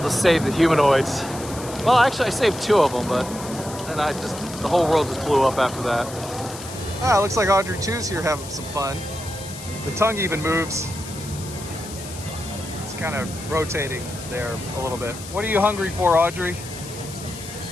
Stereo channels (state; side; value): noise; left; hiss, 13 dB below the sound